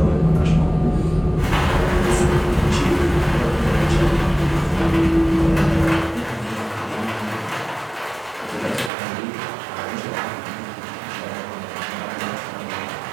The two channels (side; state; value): left; drops out; at 8.9 s